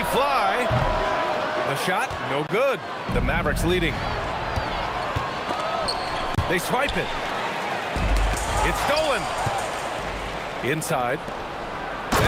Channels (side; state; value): both; identical; correlation 1.00